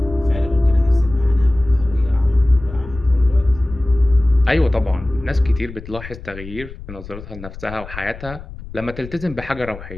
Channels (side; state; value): left; noise; rumble, 14 dB below the sound